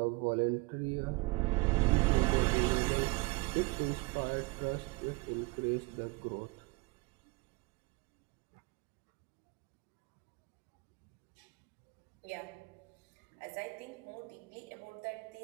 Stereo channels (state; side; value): quieter; left; 25.8 dB